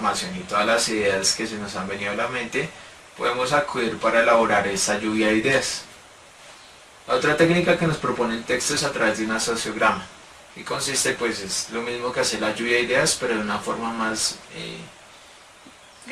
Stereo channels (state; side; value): identical; both; correlation 1.00